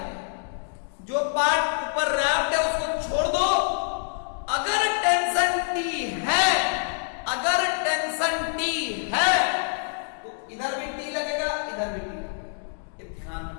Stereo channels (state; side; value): silent; right; 61 dB below the other